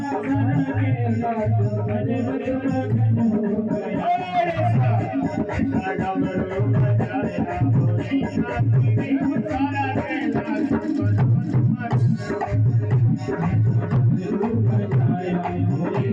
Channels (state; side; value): identical; both; correlation 1.00